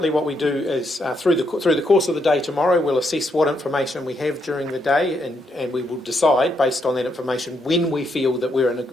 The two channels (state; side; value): normal; both; correlation 0.77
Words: what we do is through the course of the day tomorrow, we'll assess what information we have during the day, and we will decide based on that information when we feel that we're in